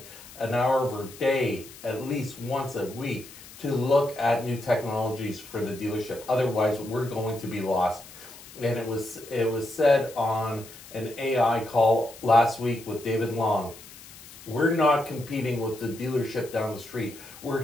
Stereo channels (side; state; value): left; noise; hiss, 18 dB below the sound